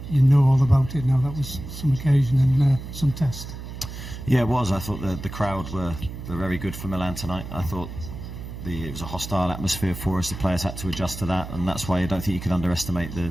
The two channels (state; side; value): noise; right; hum, 10 dB below the sound